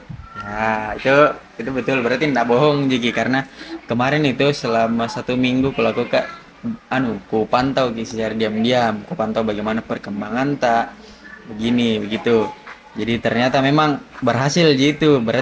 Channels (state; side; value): identical; both; correlation 1.00